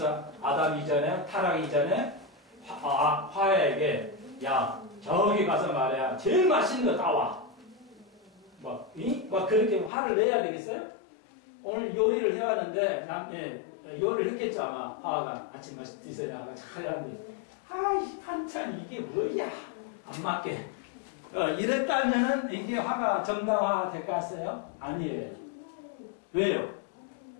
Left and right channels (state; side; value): drops out; right; at 9.9 s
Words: 아담 이전에, 타락 이전에 화야에게 야, 저기 가서 말이야. 제일 맛있는 거 따와. 막 그렇게 화를 내야 되겠어요? 오늘 요리를 해왔는데, 요리를 했겠죠, 아마. 화가 아침 맛이 드세요. 나가 잘 하는데, 아이, 반찬 이게 뭐야? 안 맞게. 이랬다면은 이게 화가 정당화 될 것 같아요? 아니에요. 왜요?